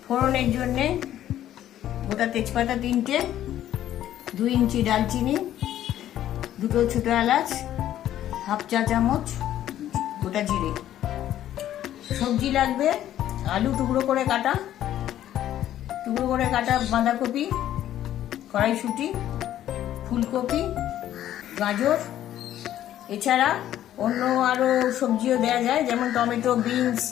ফোড়নের জন্যে গোটা তেজপাতা 3টে, 2 ইঞ্চি দালচিনি, 2টো ছোটো এলাচ, হাফ চা চামচ গোটা জিরে। সবজি লাগবে: আলু টুকরো করে কাটা বাঁধাকপি, কড়াইশুঁটি, ফুলকপি, গাজর। এছাড়া অন্য আরো সবজিও দেওয়া যায়, যেমন টমেটো, বিনস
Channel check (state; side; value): quieter; right; 12.1 dB